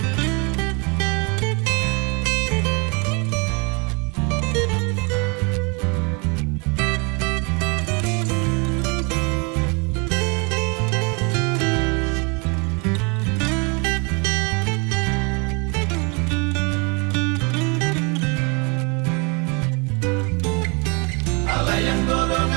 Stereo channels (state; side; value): quieter; left; 31.6 dB